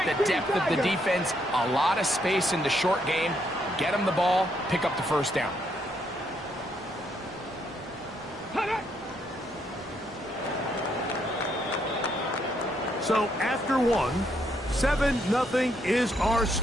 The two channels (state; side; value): normal; both; correlation 0.74